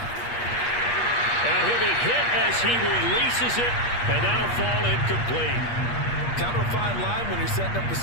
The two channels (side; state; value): right; late; 8.4 ms